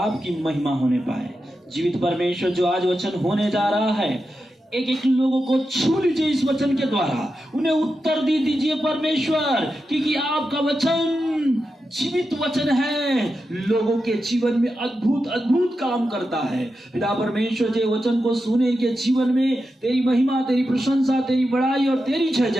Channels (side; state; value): both; normal; correlation 0.89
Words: महिमा होने पाए। जीवित परमेश्वर, जो आज वचन होने जा रहा है, एक एक लोगों को छू लीजिए इस वचन के द्वारा, उन्हें उत्तर दे दीजिए परमेश्वर, क्योंकि आपका वचन जीवित वचन है, लोगों के जीवन में अद्भुत अद्भुत काम करता है। पिता परमेश्वर, जो वचन को सुने के जीवन में तेरी महिमा, तेरी प्रशंसा, तेरी बड़ाई और तेरी जय